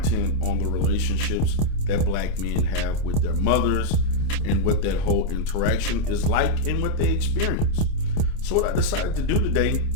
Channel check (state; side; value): late; right; 27 ms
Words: on the relationships that black men have with their mothers and what that whole interaction is like and what they experience. So what I decided to do today